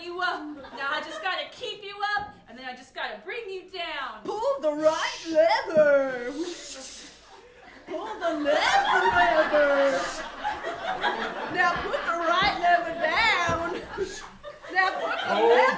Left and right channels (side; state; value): both; identical; correlation 1.00